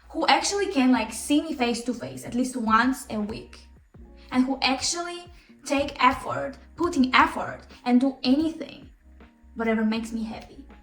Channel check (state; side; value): identical; both; correlation 1.00